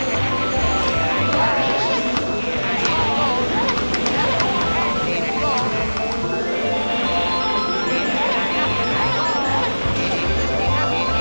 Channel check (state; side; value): inverted; both; correlation -1.00